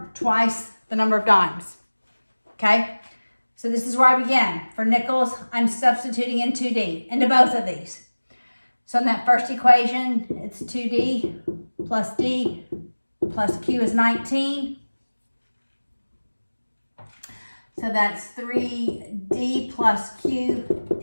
Twice the number of dimes. Okay? So this is where I begin. For nickels, I'm substituting in 2d into both of these. So in that first equation, it's 2d plus d plus q is 19. So that's 3d plus q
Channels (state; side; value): inverted; both; correlation -1.00